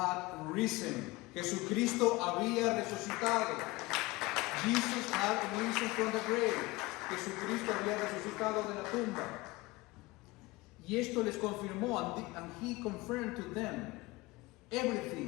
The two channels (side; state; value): right; quieter; 21.5 dB